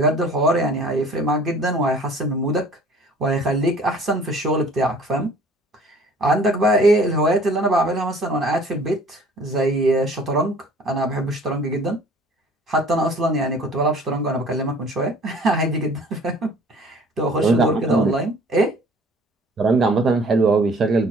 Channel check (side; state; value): both; normal; correlation 0.51